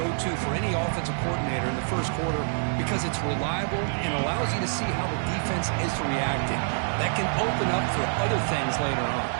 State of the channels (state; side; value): silent; left; digital silence